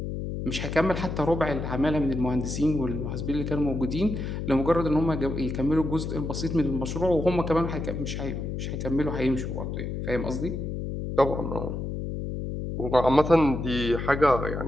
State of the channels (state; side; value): noise; left; hum, 4 dB below the sound